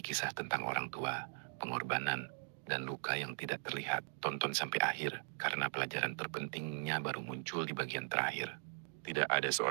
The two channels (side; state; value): left; silent; digital silence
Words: tentang orang tua, pengorbanan, dan luka yang tidak terlihat. Tonton sampai akhir, karena pelajaran terpentingnya baru muncul di bagian terakhir. Tidak ada